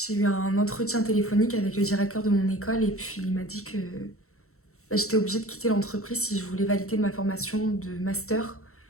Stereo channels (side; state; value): right; late; 0.63 ms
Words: eu un entretien téléphonique avec le directeur de mon école et puis il m'a dit que j'étais obligée de quitter l'entreprise si je voulais valider ma formation de master.